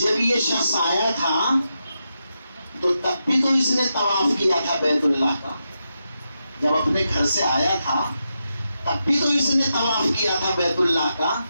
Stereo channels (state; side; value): inverted; both; correlation -0.87